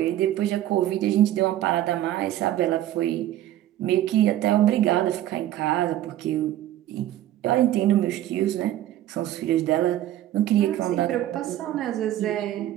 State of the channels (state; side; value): quieter; left; 13.1 dB